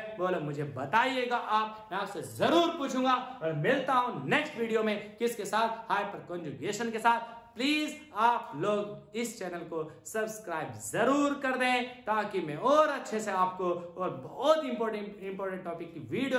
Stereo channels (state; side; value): identical; both; correlation 1.00